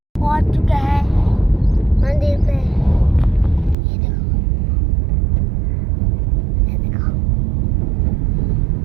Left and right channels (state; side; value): drops out; left; at 3.8 s